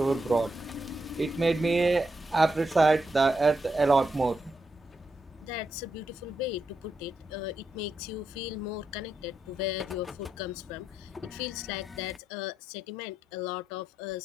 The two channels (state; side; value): normal; both; correlation 0.83